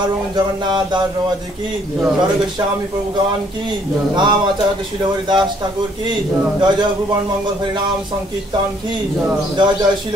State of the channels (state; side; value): normal; both; correlation 0.64